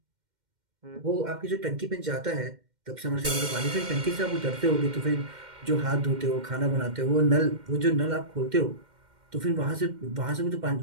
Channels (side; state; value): left; late; 2.1 ms